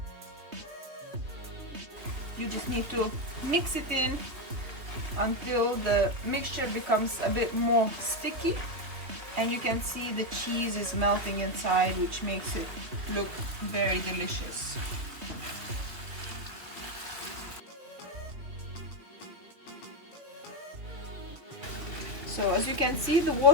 You just need to mix it in until the mixture becomes a bit more sticky, and you can see the cheese is melting inside, which makes it look very delicious. So as you can see, the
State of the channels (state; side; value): late; left; 3.2 ms